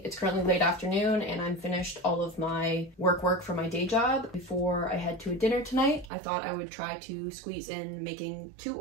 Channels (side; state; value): left; drops out; at 6.1 s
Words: It's currently late afternoon and I'm finished all of my work for my day job. Before I head to a dinner tonight, I thought I would try to squeeze in making 2